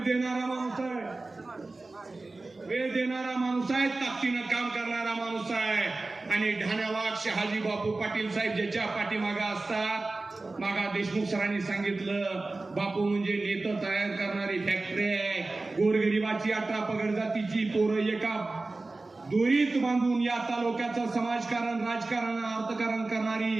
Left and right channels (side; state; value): left; quieter; 3.3 dB